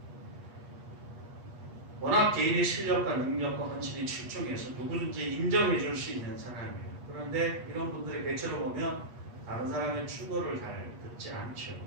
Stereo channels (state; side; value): late; left; 8.4 ms